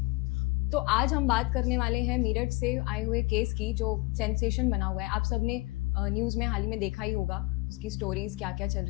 तो आज हम बात करने वाले हैं मेरठ से आए हुए केस की जो सेंसेशन बना हुआ है। आप सब ने न्यूज़ में हाल ही में देखा ही होगा, उसकी स्टोरीज क्या क्या चल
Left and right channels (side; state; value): right; quieter; 24.1 dB